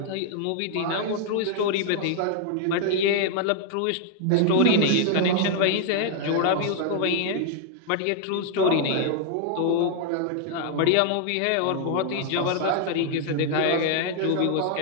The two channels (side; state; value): both; different; correlation 0.00